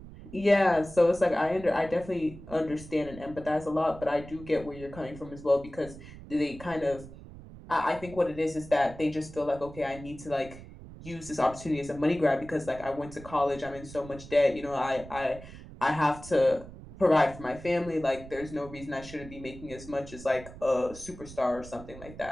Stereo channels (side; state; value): right; noise; rumble, 16 dB below the sound